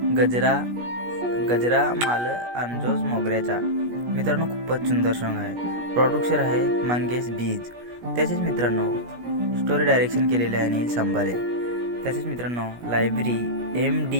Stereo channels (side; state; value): left; late; 17 ms